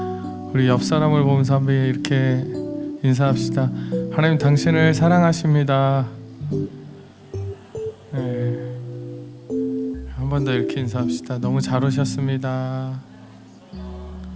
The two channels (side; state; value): both; identical; correlation 1.00